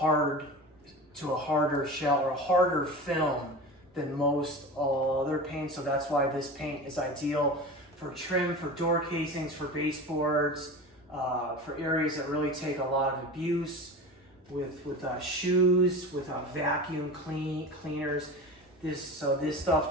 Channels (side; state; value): both; normal; correlation 0.31